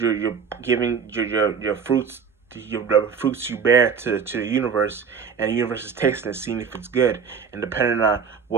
giving your fruits, the fruits you bear to the universe, and the universe is tasting it, seeing if it's good, and depending on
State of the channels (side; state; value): left; quieter; 6.4 dB